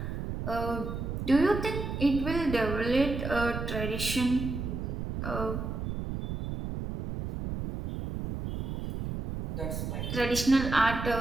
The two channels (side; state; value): right; noise; rumble, 4 dB below the sound